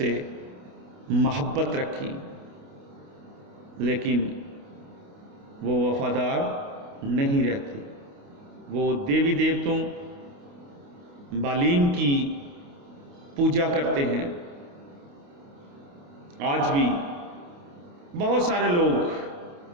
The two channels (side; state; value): left; late; 28 ms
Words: محبت رکھی، لیکن وہ وفادار نہیں رہتے۔ وہ دیوی دیوتوں بالیم کی پوجا کرتے ہیں۔ آج بھی بہت سارے لوگ